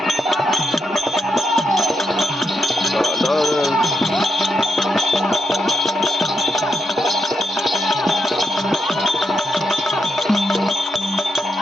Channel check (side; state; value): both; normal; correlation 0.83